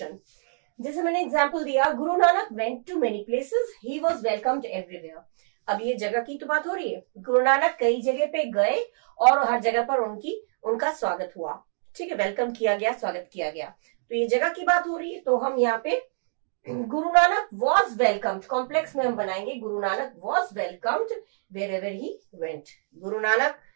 जैसे मैंने एग्जाम्पल दिया, Guru Nanak went to many places, he was welcomed everywhere. अब ये जगह की तो बात हो रही है, गुरु नानक कई जगह पे गए और हर जगह पर उनका स्वागत हुआ, ठीक है, वेलकम किया गया, स्वागत किया गया, तो ये जगह की बात हो रही है। तो हम यहाँ पे Guru Nanak was welcomed, complex में हम बनाएंगे Guru Nanak was welcomed wherever he went. Guru Nanak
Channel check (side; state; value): left; silent; digital silence